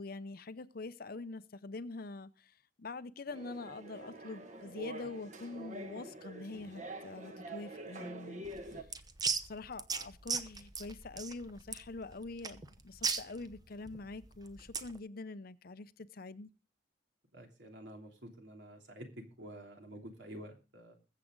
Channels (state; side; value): normal; both; correlation 0.31